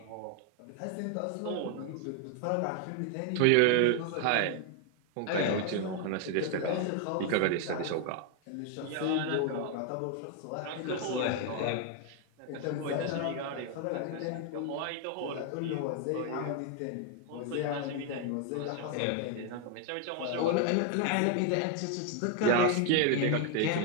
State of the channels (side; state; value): both; different; correlation 0.00